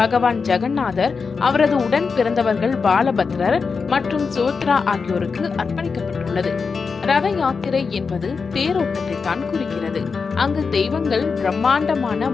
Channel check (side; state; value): right; quieter; 5.1 dB